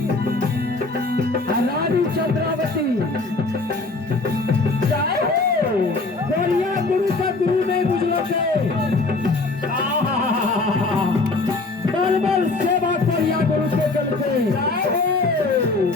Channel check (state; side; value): quieter; right; 3.4 dB